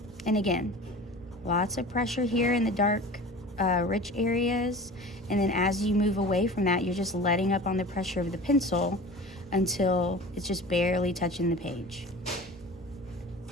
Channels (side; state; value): both; normal; correlation 0.38